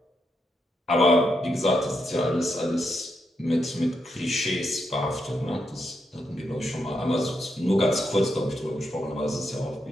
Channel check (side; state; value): both; normal; correlation 0.82